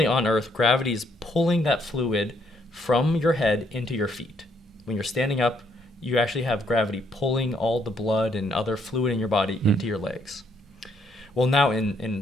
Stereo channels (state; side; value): normal; both; correlation 0.71